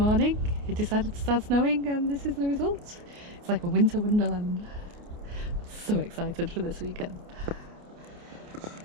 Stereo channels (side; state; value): left; late; 28 ms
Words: it decided to start snowing and this is the result. It's like a winter wonderland. So excited for this weekend.